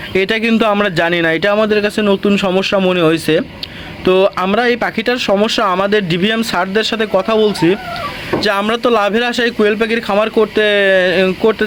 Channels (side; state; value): both; identical; correlation 1.00